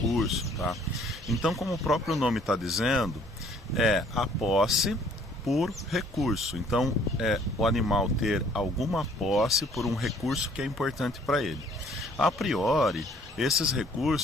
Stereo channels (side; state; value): both; normal; correlation 0.59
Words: tá? Então, como o próprio nome está dizendo, é a posse por recurso. Então, o animal ter alguma posse por um recurso que é importante para ele. A priori, esses